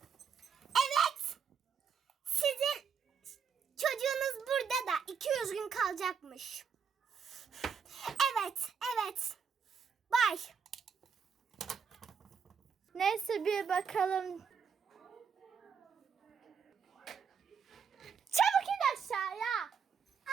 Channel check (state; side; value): quieter; left; 6.5 dB